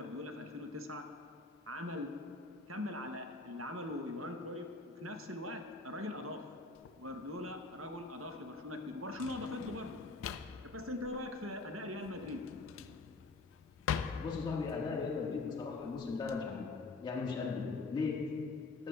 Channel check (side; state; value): right; quieter; 3.6 dB